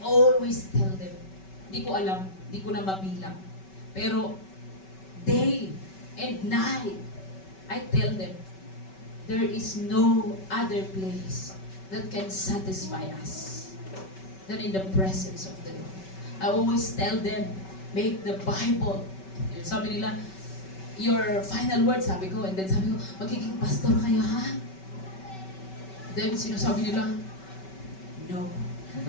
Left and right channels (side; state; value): right; late; 5.2 ms